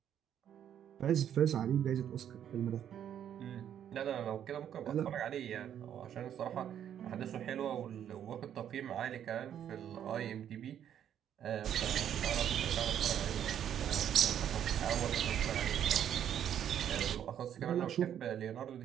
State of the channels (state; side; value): quieter; left; 9.7 dB